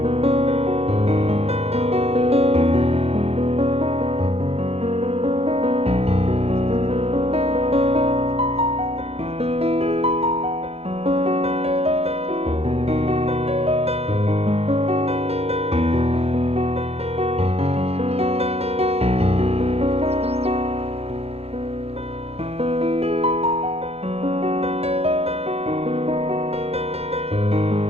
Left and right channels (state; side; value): late; left; 0.29 ms